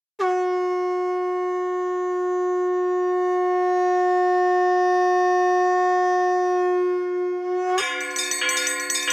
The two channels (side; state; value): both; identical; correlation 1.00